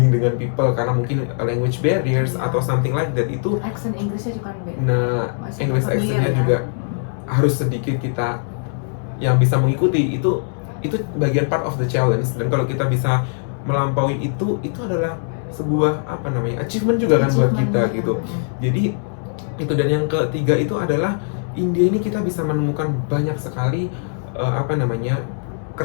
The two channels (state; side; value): silent; right; digital silence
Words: dengan people karena mungkin language barriers atau something like that, itu accent Inggrisnya juga beda. nah English accentnya juga harus sedikit kita yang bisa mengikuti. Itu bagian part of the challenge. Dan kalau kita bisa melampaui itu adalah sebuah apa namanya, achievement juga kan buat kita gitu. Jadi itu. Dan yang ketiga itu adalah India ini kita bisa menemukan banyak sekali apa namanya,